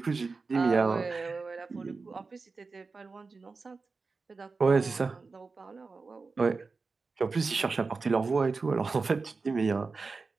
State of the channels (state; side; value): quieter; left; 4.3 dB